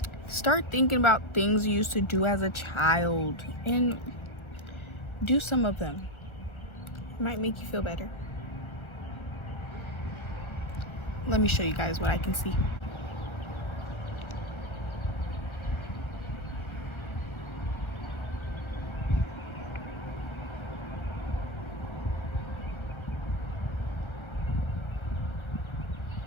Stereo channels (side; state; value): right; late; 1.3 ms